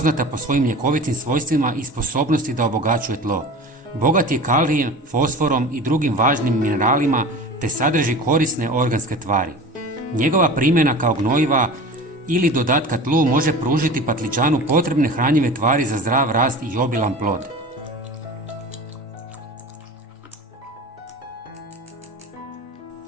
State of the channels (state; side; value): normal; both; correlation 0.36